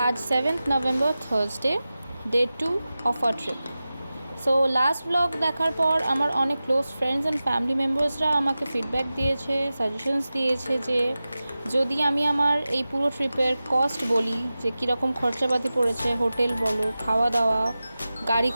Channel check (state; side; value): inverted; both; correlation -0.95